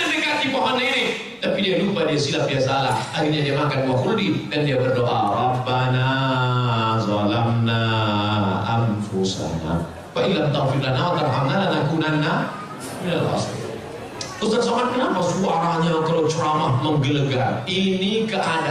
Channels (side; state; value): both; identical; correlation 1.00